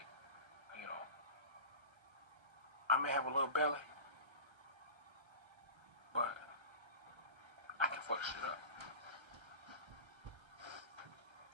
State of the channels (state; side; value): late; left; 1.3 ms